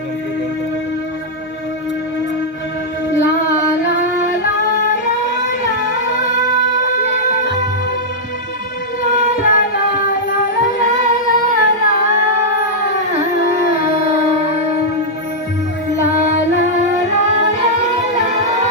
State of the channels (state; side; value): normal; both; correlation -0.06